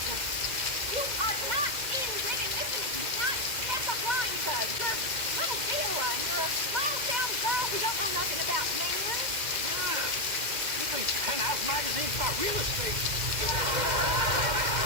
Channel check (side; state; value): left; late; 2.1 ms